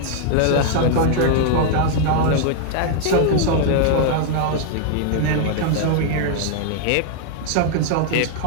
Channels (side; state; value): both; different; correlation 0.00